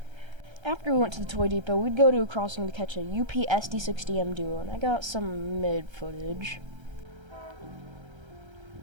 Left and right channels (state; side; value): late; left; 1.3 ms